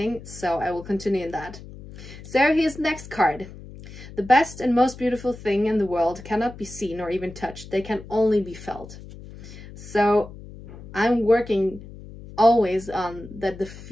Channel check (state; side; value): noise; left; hum, 15 dB below the sound